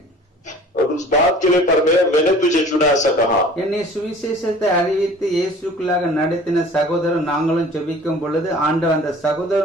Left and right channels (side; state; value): both; normal; correlation 0.47